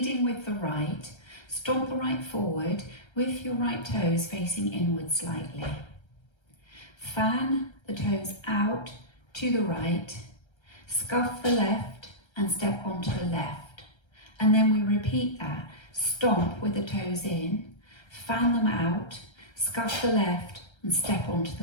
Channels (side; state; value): right; late; 1.3 ms